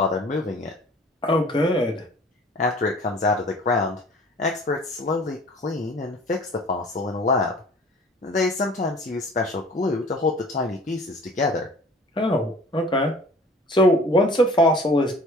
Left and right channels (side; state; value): both; normal; correlation 0.48